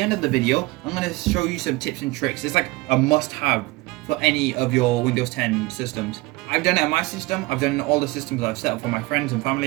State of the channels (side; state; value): left; quieter; 22.4 dB